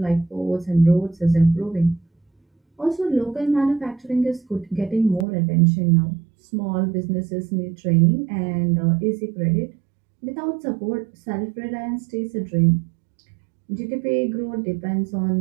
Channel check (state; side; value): drops out; left; at 5.2 s